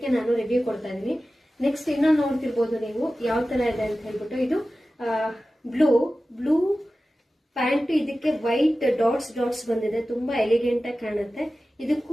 ನಾನು ರಿವ್ಯೂ ಕೊಡ್ತಾ ಇದ್ದೀನಿ. ನೆಕ್ಸ್ಟ್ ಇನ್ನೊಂದು ನೋಡ್ತಿರ್ಬೋದು ನೀವು ಯಾವ ತರ ಇದೆ ಅಂತ ಹೇಳ್ಬಿಟ್ಟು. ಇದು ಬ್ಲೂ ಪ್ಯಾಂಟ್, ಇದಕ್ಕೆ ವೈಟ್ ಡಾಟ್ಸ್ ಬಂದಿದೆ, ತುಂಬಾ ಎಲಿಗೆಂಟ್ ಆಗಿ ಕಾಣುತ್ತೆ.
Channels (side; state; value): both; normal; correlation 0.95